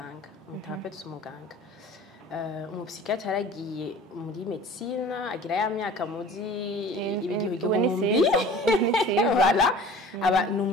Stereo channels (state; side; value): normal; both; correlation 0.43